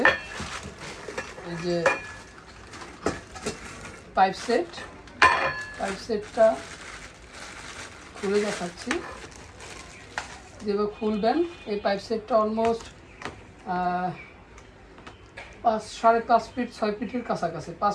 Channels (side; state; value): both; identical; correlation 1.00